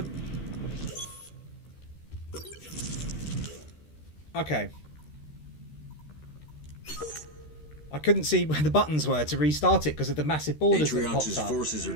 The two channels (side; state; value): right; late; 13 ms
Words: Okay. I couldn't see where the buttons were to restart it because of the massive borders that popped Atriox's up. forces are